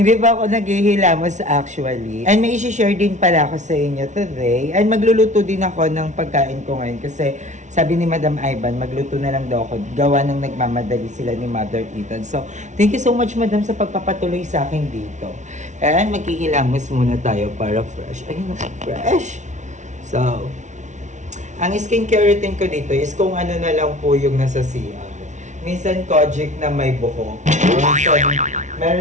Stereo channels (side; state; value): left; late; 0.35 ms